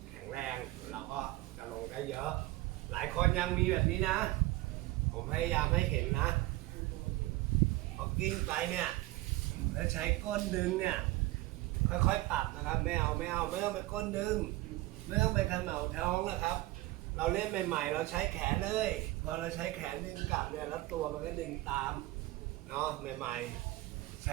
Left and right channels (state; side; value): quieter; left; 18.8 dB